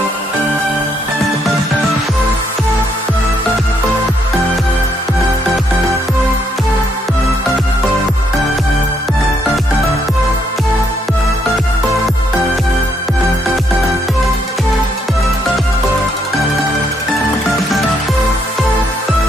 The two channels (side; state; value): both; normal; correlation 0.73